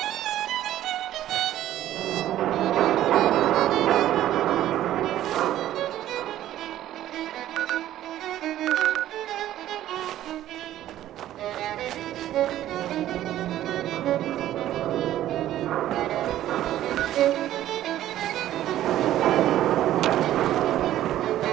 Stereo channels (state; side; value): quieter; left; 13.0 dB